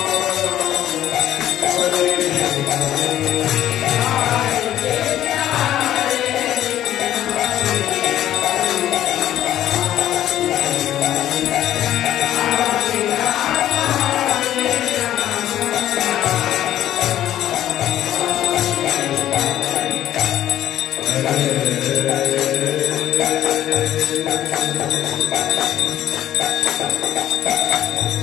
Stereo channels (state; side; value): quieter; right; 12.2 dB